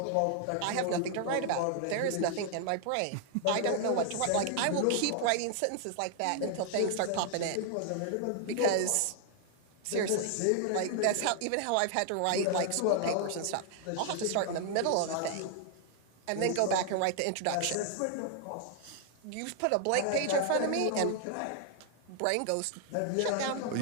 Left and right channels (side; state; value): both; different; correlation 0.00